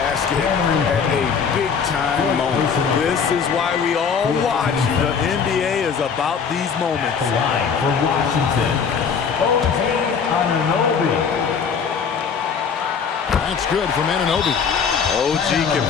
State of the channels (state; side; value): quieter; right; 6.3 dB